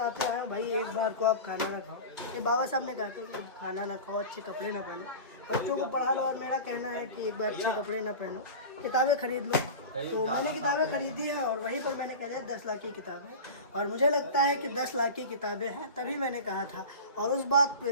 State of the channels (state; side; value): inverted; both; correlation -0.30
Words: आया हूँ भाई, एक बार को आप खाना ना खाओ। ये बाबा साहब ने कहा था कि खाना ना खाओ, अच्छे कपड़े ना पहनो, बच्चों को पढ़ा लो। और मेरा कहना है कि एक बार अच्छे कपड़े ना पहनो, किताबें खरीद लो। तो मैंने किताबें खरीदी हैं और वहीं पर मैंने कह दिया 10 लाख की किताबें, और मुझे लगता है कि 10 लाख की किताबें हैं, तभी मैंने कहा था। और उस बात